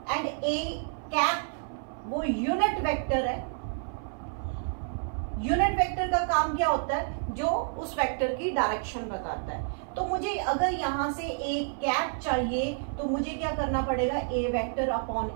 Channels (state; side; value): silent; left; 58 dB below the other